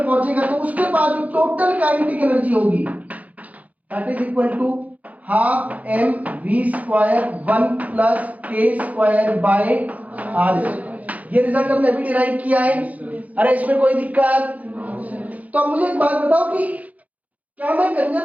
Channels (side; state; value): left; late; 0.073 ms